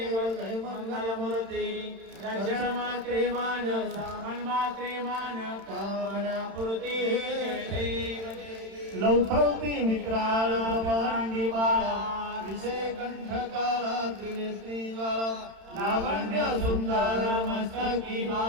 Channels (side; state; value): left; late; 31 ms